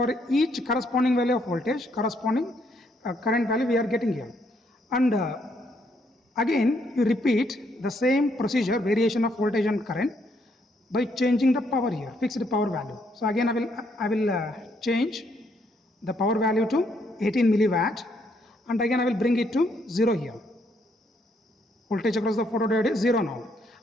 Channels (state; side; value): normal; both; correlation 0.72